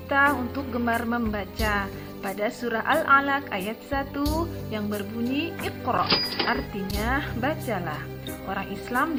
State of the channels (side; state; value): both; identical; correlation 1.00